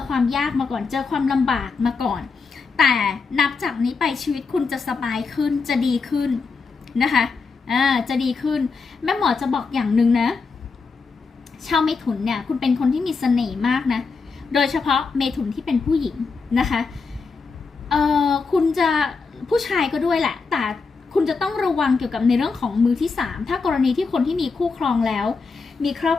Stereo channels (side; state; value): right; quieter; 4.7 dB